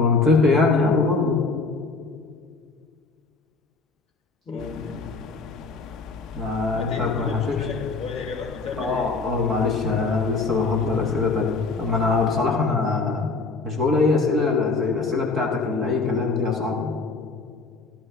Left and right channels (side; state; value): right; quieter; 3.9 dB